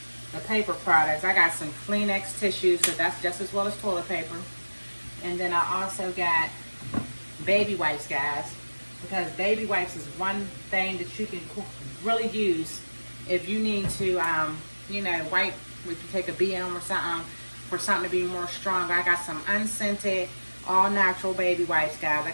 the paper products. I got some Kleenex tissues, so that's just as well as toilet paper. And then I also got baby wipes, guys, because baby wipes is one thing that you can really use if you need to, you know, wipe if you take a BM or something, for something to be more strong. I got some unscented, all natural baby wipes, guys. I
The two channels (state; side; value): inverted; both; correlation -1.00